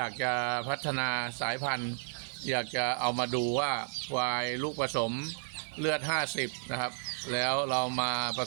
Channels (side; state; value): left; silent; 56 dB below the other